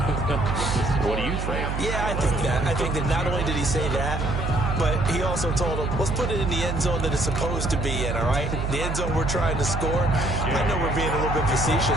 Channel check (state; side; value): noise; right; hum, 3 dB below the sound